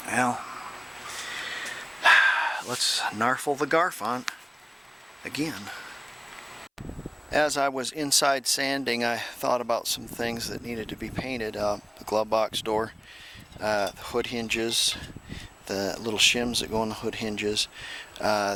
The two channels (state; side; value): identical; both; correlation 1.00